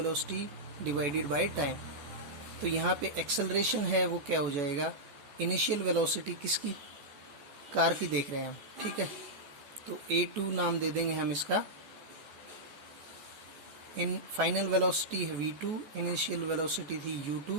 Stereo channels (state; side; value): late; left; 14 ms